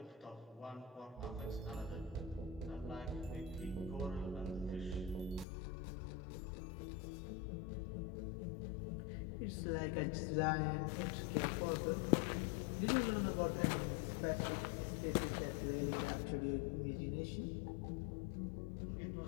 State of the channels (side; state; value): right; drops out; at 5.5 s